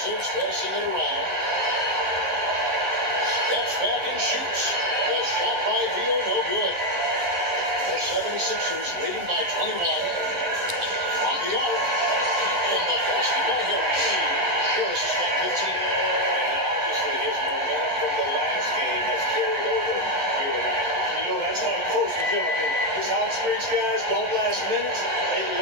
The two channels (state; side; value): late; left; 11 ms